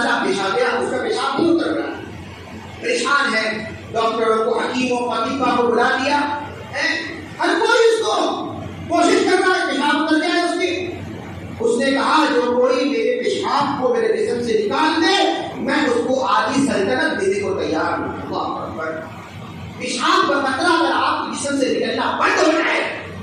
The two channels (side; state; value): both; identical; correlation 1.00